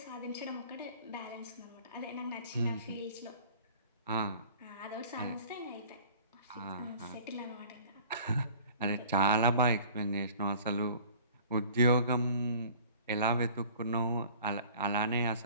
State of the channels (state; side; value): inverted; both; correlation -0.48